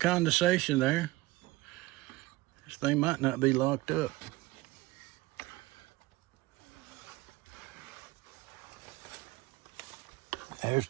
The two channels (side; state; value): left; quieter; 19.3 dB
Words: there. This thing might not be locked up. There's